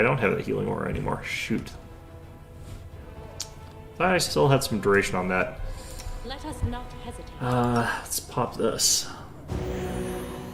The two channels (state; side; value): identical; both; correlation 1.00